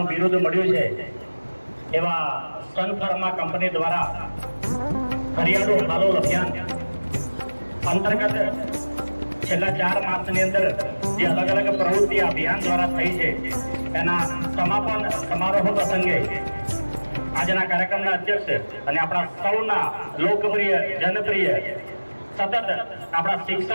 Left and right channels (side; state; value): both; inverted; correlation -1.00